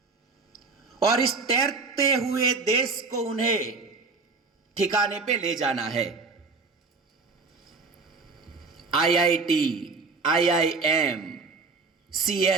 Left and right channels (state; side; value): quieter; left; 4.2 dB